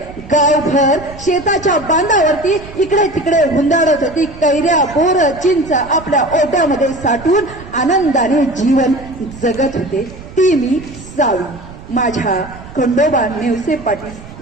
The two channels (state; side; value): noise; right; rumble, 16 dB below the sound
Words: गावभर शेताच्या बांधावरती इकडे तिकडे हुंदाडत होती. कैऱ्या बोर चिंच आपल्या ओट्यामध्ये साठवून आनंदाने जीवन जगत होते. ती मी सावी, माझ्या खंडोबा नेवसे पाटील